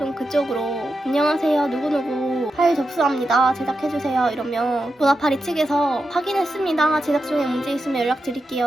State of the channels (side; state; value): both; normal; correlation 0.88